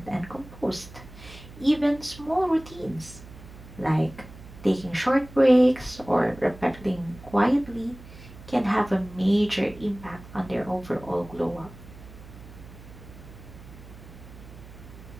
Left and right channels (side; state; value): right; noise; hum, 17 dB below the sound